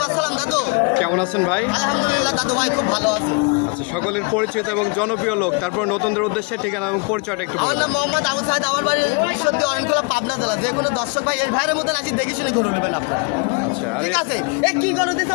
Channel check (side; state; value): right; quieter; 33.3 dB